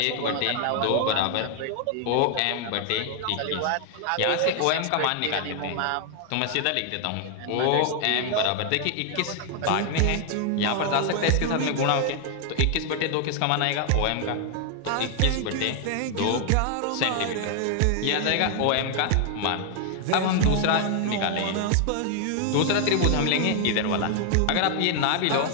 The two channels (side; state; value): both; different; correlation 0.00